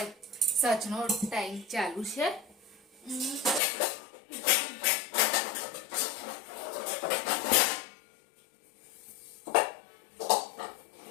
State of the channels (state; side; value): drops out; right; at 3.6 s